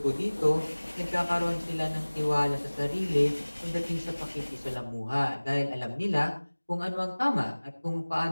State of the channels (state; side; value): inverted; both; correlation -1.00